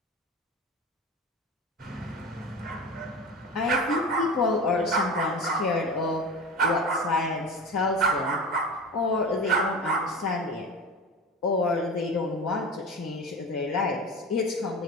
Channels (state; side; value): normal; both; correlation 0.30